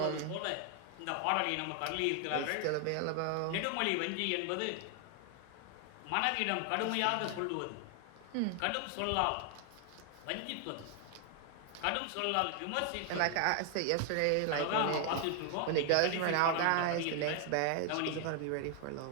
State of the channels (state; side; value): different; both; correlation 0.00